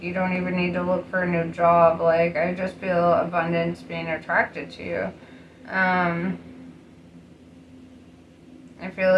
you don't even need to look for a new job. Like, I just feel abundance being attracted to you. I feel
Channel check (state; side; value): identical; both; correlation 1.00